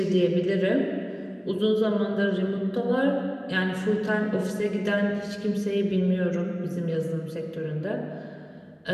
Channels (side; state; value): both; identical; correlation 1.00